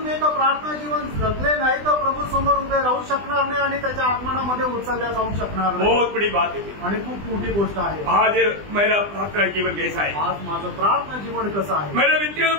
एका प्रार्थना जीवन जगले नाही तर प्रभू समोर उभे राहू शकणार नाही आणि त्याच्या आगमनामध्ये उचलल्या जाऊ शकणार नाही। बहुत बड़ी बात है। आणि खूप मोठी गोष्ट आहे। आज मेरा प्रार्थना जीवन कैसा है? आज माझं प्रार्थना जीवन कसं आहे? मेरा व्यक्तिगत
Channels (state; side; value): late; left; 20 ms